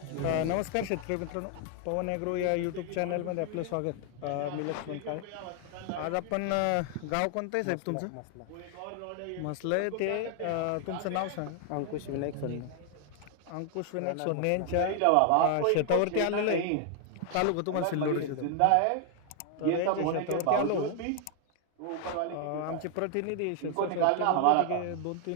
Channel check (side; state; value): both; different; correlation 0.00